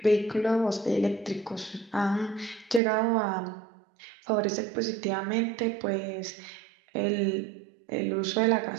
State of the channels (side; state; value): left; drops out; at 2.8 s